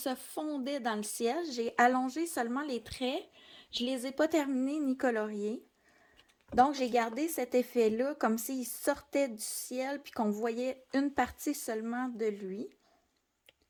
fondait dans le ciel. J'ai allongé seulement les traits. Je ne les ai pas terminés ni coloriés. Donc, j'ai gardé cet effet-là comme s'il sortait du ciel puis qu'on voyait une partie seulement de lui.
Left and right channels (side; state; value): both; identical; correlation 1.00